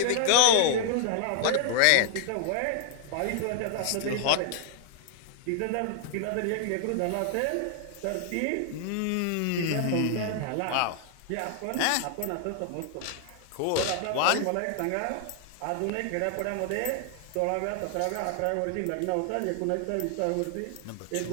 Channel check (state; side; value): different; both; correlation 0.00